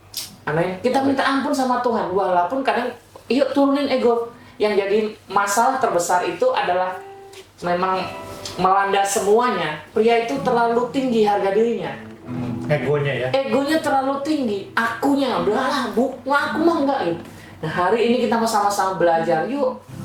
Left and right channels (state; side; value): identical; both; correlation 1.00